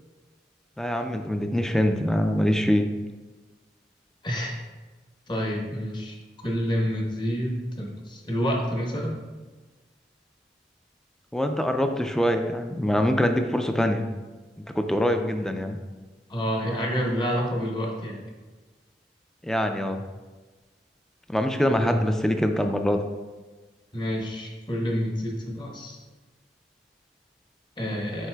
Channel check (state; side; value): normal; both; correlation 0.85